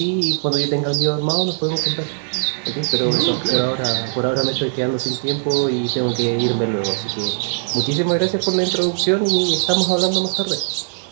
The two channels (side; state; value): left; silent; digital silence